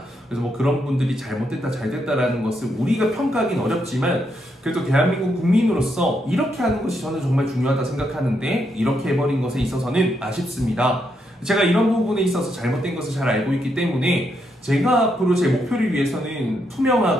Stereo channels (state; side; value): normal; both; correlation 0.79